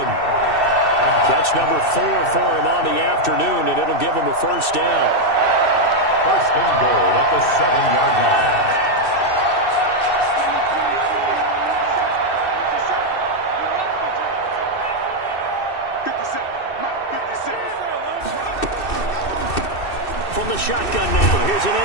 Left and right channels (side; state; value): right; late; 2.6 ms